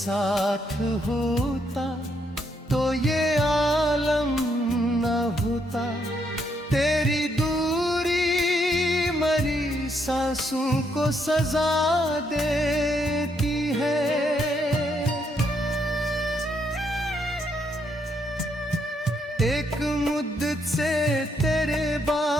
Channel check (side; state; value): both; normal; correlation 0.75